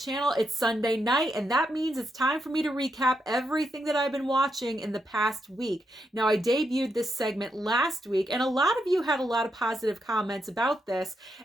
It's Sunday night, and that means it's time for me to recap everything that I've been watching in the past week. Now, I debuted this segment last week, and a lot of you had a lot of positive comments about this,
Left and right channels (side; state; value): both; normal; correlation 0.82